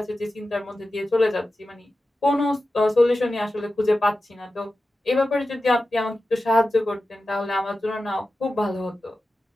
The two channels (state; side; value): normal; both; correlation 0.93